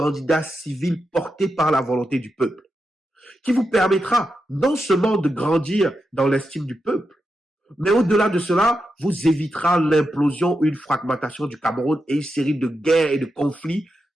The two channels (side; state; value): both; normal; correlation 0.87